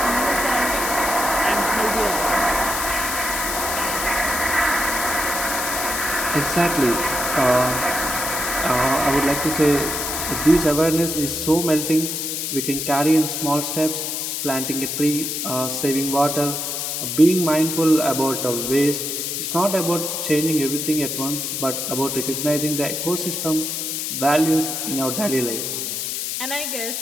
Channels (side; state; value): left; noise; hiss, 3 dB below the sound